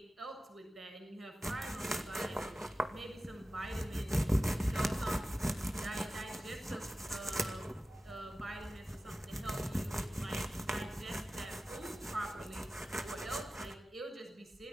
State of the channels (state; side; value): normal; both; correlation 0.95